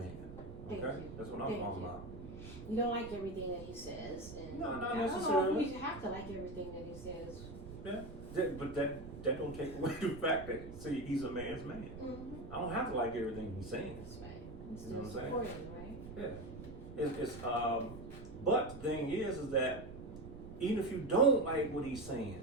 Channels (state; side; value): noise; right; rumble, 12 dB below the sound